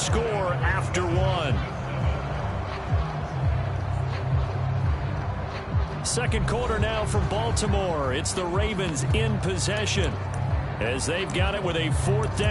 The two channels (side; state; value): both; identical; correlation 1.00